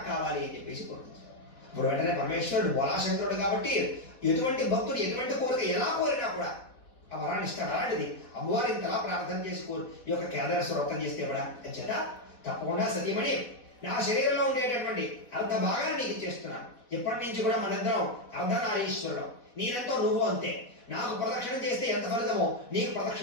కావాలి అని చెప్పేసి కోరుకుంటాడు. ఇప్పుడు వెంటనే పరమేశ్వరుడు బోలాశంకరుడు కాబట్టి ఎటువంటి భక్తుడు ఎటువంటి కోరిక ఎలా కోరినా కూడా ఆ వరాన్ని ఇస్తాడు. అలాంటిది అమ్మవారు ఇంతలా ప్రార్థన చేసి ఈ యొక్క కేదారేశ్వర వ్రతం చేస్తే కూడా చేత తప్పకుండా సతీమణి నా శరీరంలో ఉండేటటువంటి అర్ధ భాగాన్ని నీకు ఇచ్చేస్తున్నాను. ఇప్పటి నుంచి కూడా మనిద్దరం అర్ధనారీశ్వరుడు, నేనెంతో నువ్వు అంతే. నాకు ప్రదక్షిణం చేస్తే ఎంత ఫలితమో నీకు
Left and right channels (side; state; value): right; late; 3.9 ms